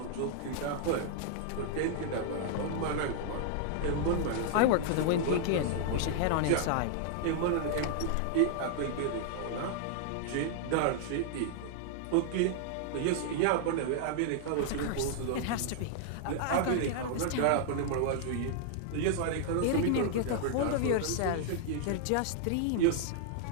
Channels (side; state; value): both; different; correlation -0.01